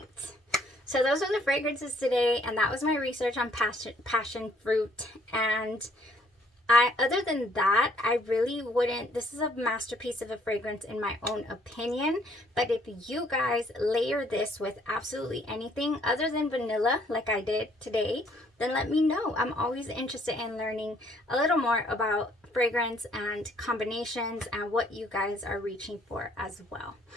So those are the fragrances today, and that was my research on passion fruit. And other than that, I really wouldn't, this is a masterpiece of a fragrance in my own opinion, but if you guys layer this with absolutely anything other than vanilla, like I did today, then let me know. I'm always interested in learning a little more about fragrance and combinations and what you guys are reaching for as well.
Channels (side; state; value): both; normal; correlation 0.64